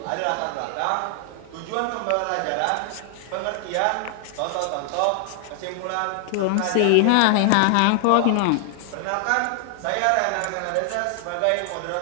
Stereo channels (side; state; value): both; different; correlation 0.00